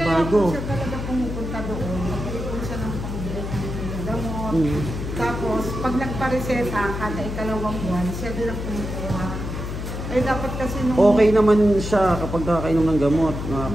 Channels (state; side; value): noise; left; hum, 5 dB below the sound